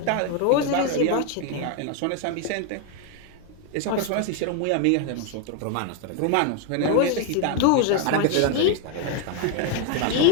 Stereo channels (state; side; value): different; both; correlation 0.01